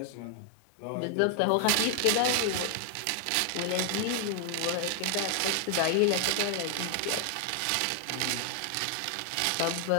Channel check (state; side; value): different; both; correlation 0.00